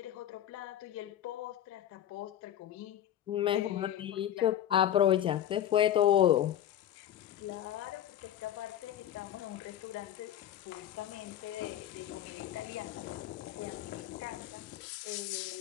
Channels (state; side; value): quieter; right; 11.1 dB